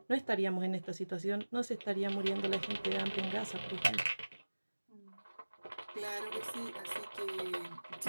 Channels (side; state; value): both; inverted; correlation -1.00